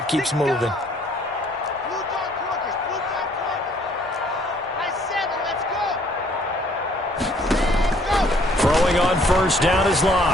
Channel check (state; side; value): normal; both; correlation 0.61